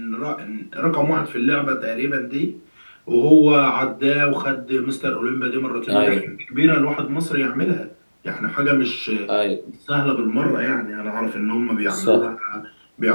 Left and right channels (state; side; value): inverted; both; correlation -1.00